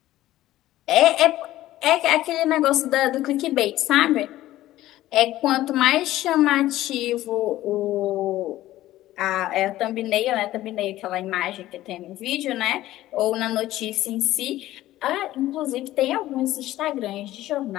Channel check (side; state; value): right; quieter; 15.1 dB